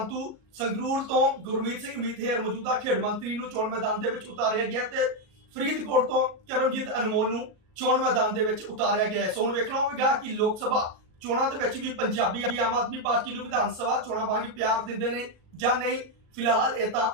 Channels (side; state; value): left; late; 38 ms